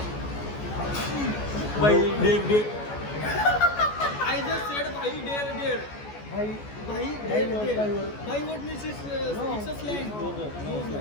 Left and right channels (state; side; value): late; right; 14 ms